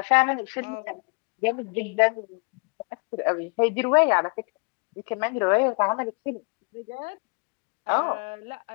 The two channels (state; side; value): quieter; right; 33.6 dB